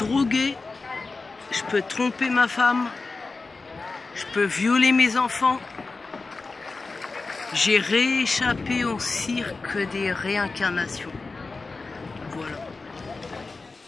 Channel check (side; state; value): right; quieter; 3.8 dB